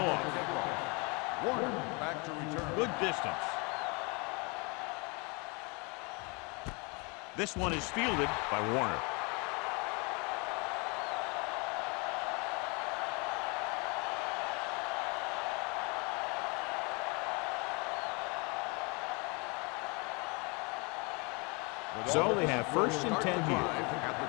off. Warner back to return. Good distance. This one is fielded by Warner. So they have first and 10 here. At the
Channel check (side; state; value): right; quieter; 30.4 dB